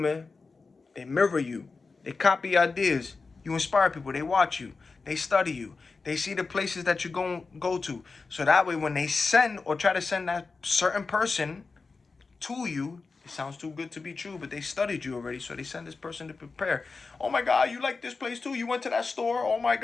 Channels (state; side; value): quieter; right; 4.3 dB